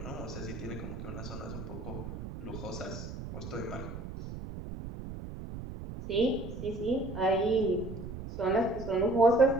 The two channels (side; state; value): right; noise; rumble, 9 dB below the sound